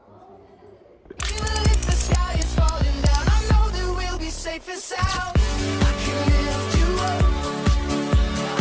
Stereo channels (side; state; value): both; identical; correlation 1.00